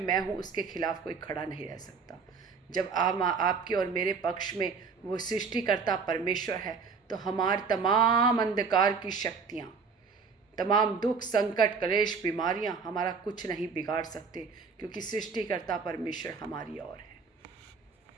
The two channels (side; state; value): left; quieter; 5.2 dB